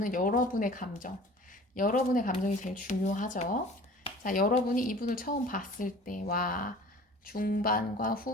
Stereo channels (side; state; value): both; normal; correlation 0.45